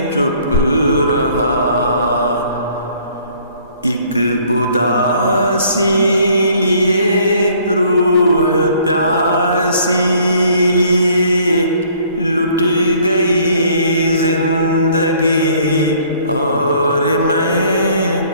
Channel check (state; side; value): inverted; both; correlation -0.59